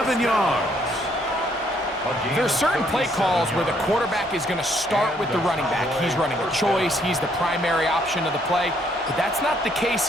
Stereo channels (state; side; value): normal; both; correlation 0.68